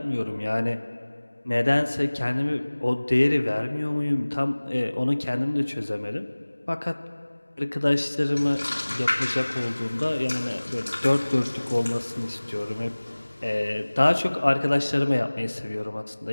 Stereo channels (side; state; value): both; inverted; correlation -1.00